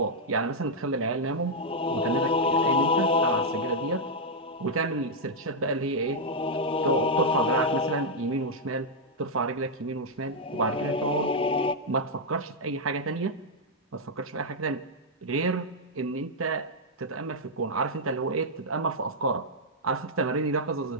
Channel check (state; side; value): normal; both; correlation -0.03